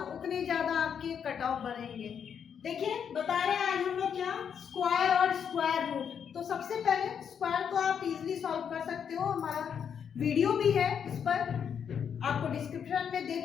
उतने ज्यादा आपके कट ऑफ बढ़ेंगे। देखिए, बता रहे हैं आज हम लोग क्या, स्क्वायर और स्क्वायर रूट। तो सबसे पहले स्क्वायर को आप इजीली सॉल्व कर सकते हो, हमारा वीडियो भी है इस पर, आपको डिस्क्रिप्शन में दे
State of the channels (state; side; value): quieter; right; 7.7 dB